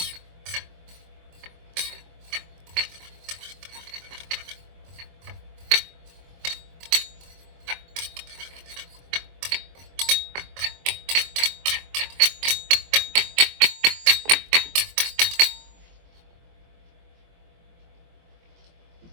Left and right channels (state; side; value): late; left; 23 ms